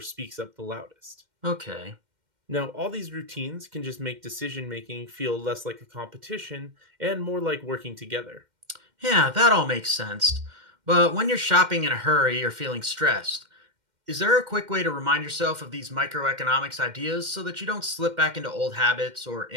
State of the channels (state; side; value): late; left; 2.1 ms